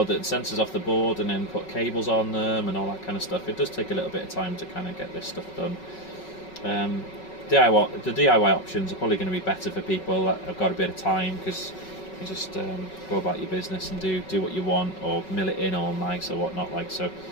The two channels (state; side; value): late; right; 5.4 ms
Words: the sensors off the board, and then put cables on them and all that kind of stuff, it does take a little bit of time to kind of get this stuff done. The DIY options are probably going to be better for people that have got a bit of time, because you just go about your business and do what you want, or mill it in all nice or whatnot, like so.